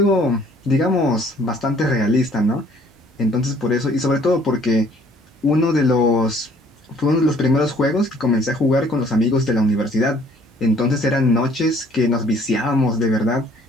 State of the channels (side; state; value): both; normal; correlation 0.58